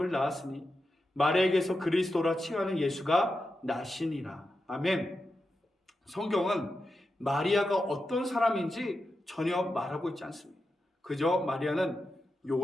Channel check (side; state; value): both; normal; correlation 0.89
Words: 낳았으니 마리아에게서 그리스도라 칭하는 예수가 나시니라. 아멘. 성경은 마리아가 어떤 사람인지 전혀 말하고 있지 않습니다. 그저 마리아는